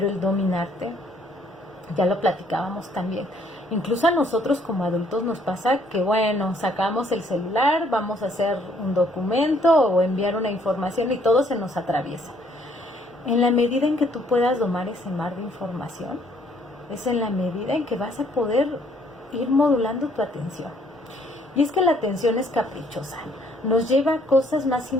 el dominarte, ya lo platicábamos también, incluso a nosotros como adultos nos pasa que bueno, sacamos el celular, vamos a hacer un documento o enviar una información y todo se nos atraviesa. En la medida en que tú puedas domar ese mar de información, es en la medida en que vas a poder ir modulando tu atención. Y es que la atención es caprichosa, nos lleva a cosas más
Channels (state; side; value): normal; both; correlation 0.65